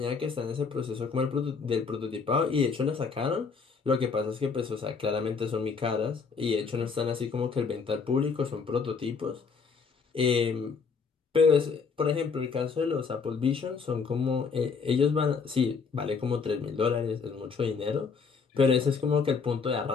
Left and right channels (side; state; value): right; quieter; 5.3 dB